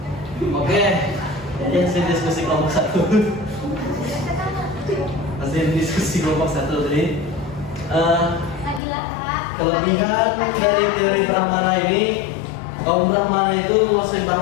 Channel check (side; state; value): right; drops out; at 8.8 s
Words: Oke, jadi hasil diskusi kelompok 1. Hasil diskusi kelompok 1 tadi. Nabila Kak. Kelebihan dari teori Brahmana ini, kaum Brahmana itu menguasai